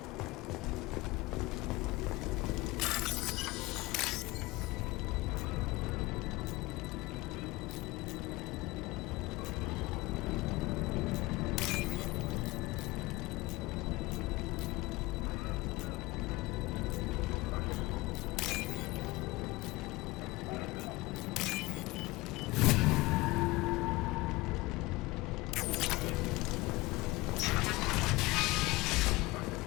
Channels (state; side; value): quieter; right; 21.2 dB